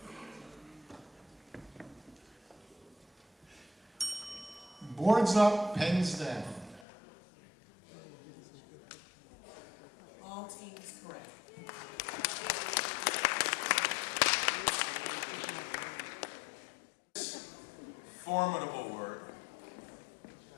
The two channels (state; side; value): drops out; right; at 6.9 s